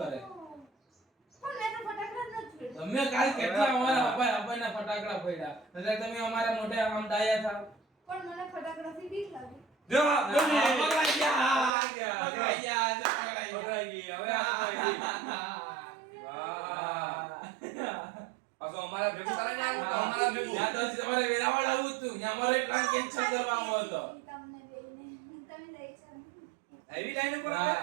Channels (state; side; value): drops out; left; at 11.7 s